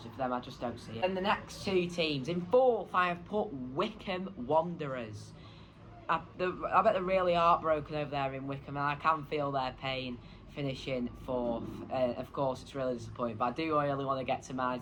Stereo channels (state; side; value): identical; both; correlation 1.00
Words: for them, I just don't see it. And the next 2 teams. In 4th, I have put Wycombe Wanderers. I bet they're really heartbroken over there in Wycombe, and I can feel their pain finishing 4th. Of course, it's really disappointing, but I do really want to get to my